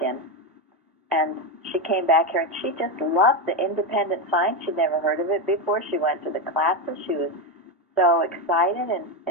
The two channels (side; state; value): both; normal; correlation 0.11